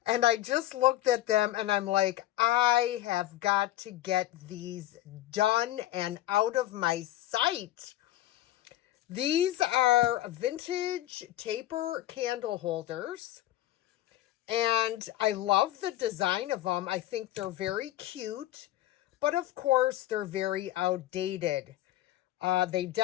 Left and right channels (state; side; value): quieter; right; 14.5 dB